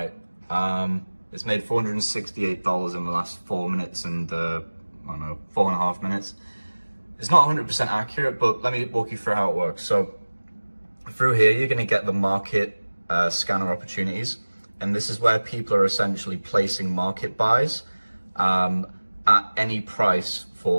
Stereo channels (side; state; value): both; inverted; correlation -1.00